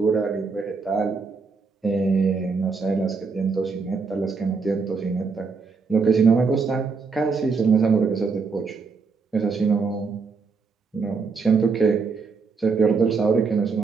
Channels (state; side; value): quieter; left; 4.7 dB